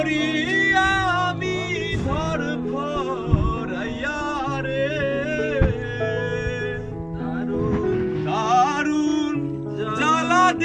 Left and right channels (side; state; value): both; identical; correlation 1.00